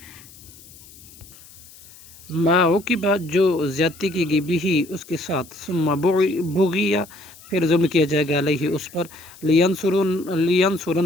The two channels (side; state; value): left; noise; hiss, 21 dB below the sound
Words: ما عوقبہ، جو زیادتی کی گئی، بھی اس کے ساتھ، ثم بغیا، پھر ظلم کیا جائے گا، علیہ اس پر،